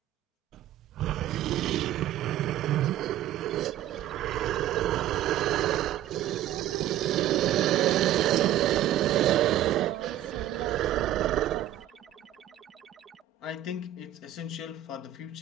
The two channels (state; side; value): quieter; left; 12.2 dB